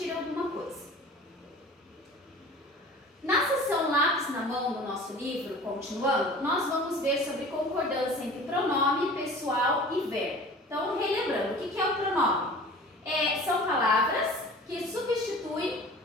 alguma coisa. Na seção Lápis na Mão do nosso livro, continuando, nós vamos ver sobre concordância entre pronome, pessoal e verbo. Então, relembrando, o que é o pronome? São palavras que substituem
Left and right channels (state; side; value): normal; both; correlation 0.42